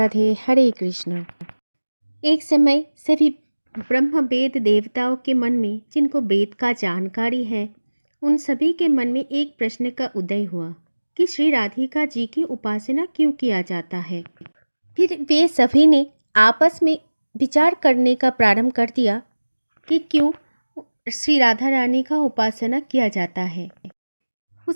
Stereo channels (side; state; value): both; inverted; correlation -1.00